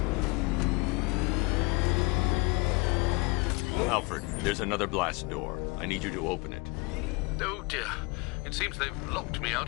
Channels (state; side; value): quieter; right; 26.9 dB